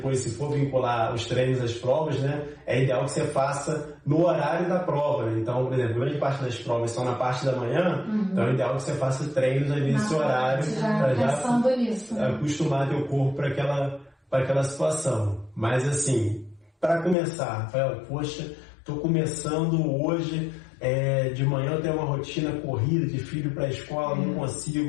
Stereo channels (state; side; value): drops out; right; at 17.2 s